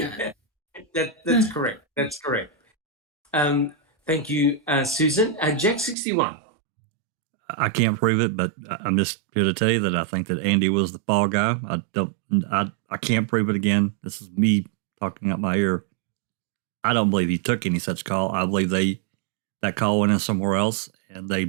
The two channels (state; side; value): drops out; left; at 6.0 s